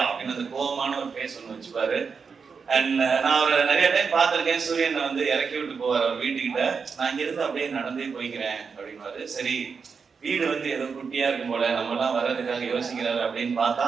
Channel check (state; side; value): quieter; left; 5.6 dB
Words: அப்படின்னு அந்த கோபமான ஒரு ஃபேஸ் ஒன்று வச்சுப்பாரு. அண்ட் நான் அவரை நிறைய டைம் பார்த்திருக்கேன். சூரியன் இறக்கி விட்டு போவார் அவர் வீட்டுக்கிட்ட. நான் இங்க இருந்து அப்படியே நடந்தே போய்க்கிறேன் அப்படின்வாரு. சரி, வீடு ஏதோ குட்டியா இருக்கும் போல, நம்ம எல்லாம் வர்றதுக்காக யோசிக்கிறாரு அப்படின்னு பார்த்தா